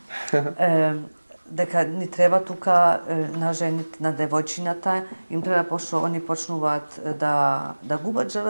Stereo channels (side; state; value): both; inverted; correlation -1.00